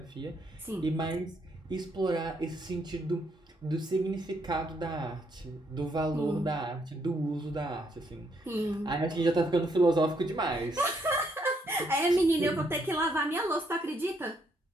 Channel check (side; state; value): both; normal; correlation 0.73